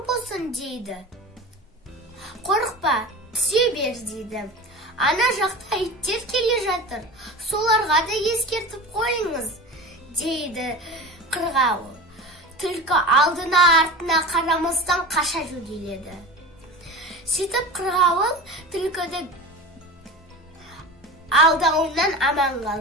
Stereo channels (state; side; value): normal; both; correlation 0.31